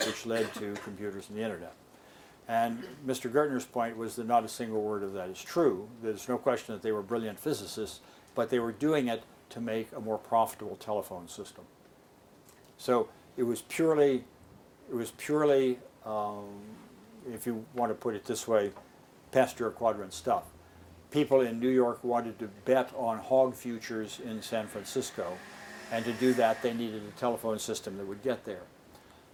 which led to computers and the internet. And Mr. Gertner's point was that not a single word of that is true. There's no question that they were brilliant physicists, but they were doing it to make a more profitable telephone system. So it was purely, if you want to put it this way, Pasteur quadrant stuff. People in New York wanted to bet on hog futures in San Francisco, and to do that they needed a telephone system that would get there.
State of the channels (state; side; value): identical; both; correlation 1.00